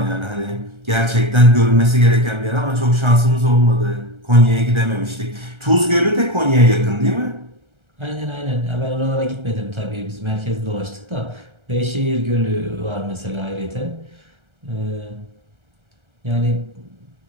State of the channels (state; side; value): late; left; 1.3 ms